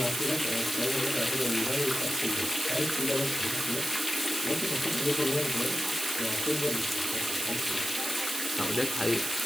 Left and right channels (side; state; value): right; noise; hiss, 3 dB below the sound